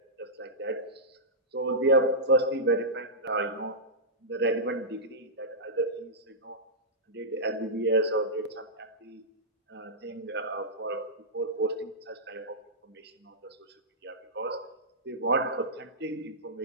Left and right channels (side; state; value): both; normal; correlation -0.13